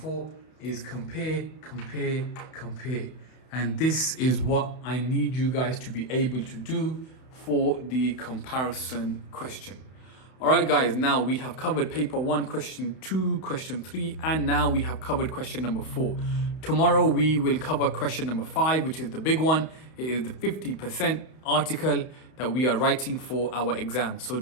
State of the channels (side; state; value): right; late; 31 ms